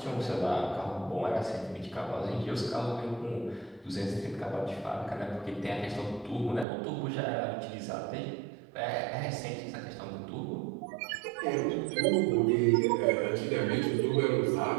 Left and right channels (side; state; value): left; drops out; at 6.7 s